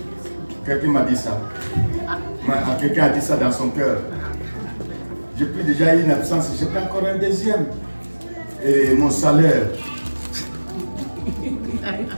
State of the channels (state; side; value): inverted; both; correlation -1.00